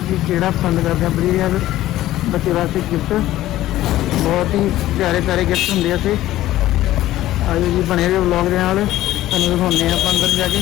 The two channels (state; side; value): quieter; right; 14.8 dB